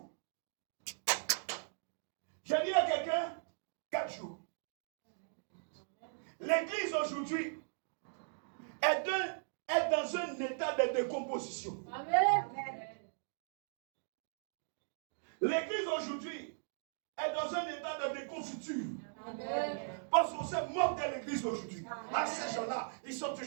Je dis à quelqu'un, 4 jours. L'église aujourd'hui est dans position. Amen. L'église aujourd'hui est dans un état de déconfiture. Amen. Parce qu'on se moque de l'église aujourd'hui. À ces gens-là, ils sont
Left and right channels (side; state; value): left; silent; digital silence